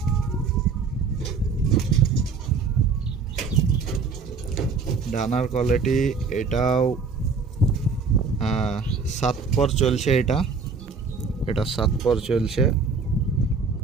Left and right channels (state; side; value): quieter; left; 4.9 dB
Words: ডানার কোয়ালিটি এটাও 7 পর চলছে। এটা 7 পর চলছে।